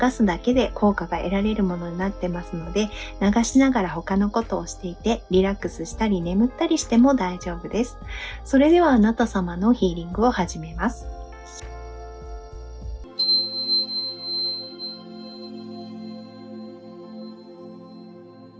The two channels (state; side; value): identical; both; correlation 1.00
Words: すだけで効果が得られるものになってますので、流しながら他のことをしていてリラックスしたり眠ったりしても大丈夫です。それではあなた様のヒーリングを始めます。